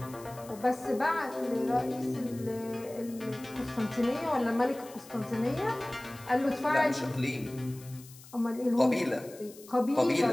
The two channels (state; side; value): noise; left; hiss, 20 dB below the sound